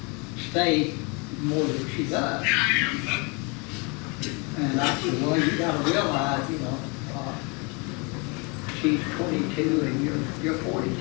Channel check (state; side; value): quieter; right; 31.0 dB